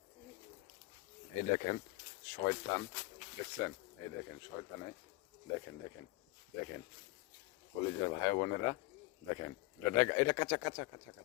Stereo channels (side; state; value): right; quieter; 20.8 dB